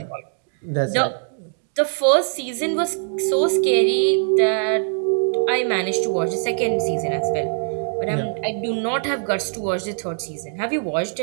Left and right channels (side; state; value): left; silent; digital silence